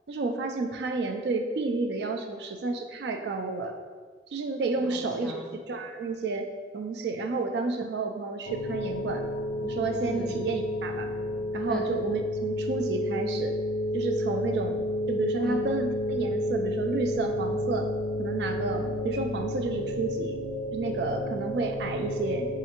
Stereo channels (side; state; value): both; normal; correlation 0.45